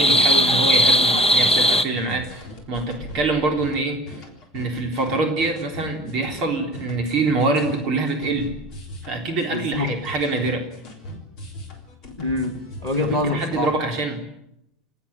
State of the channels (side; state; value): both; normal; correlation 0.37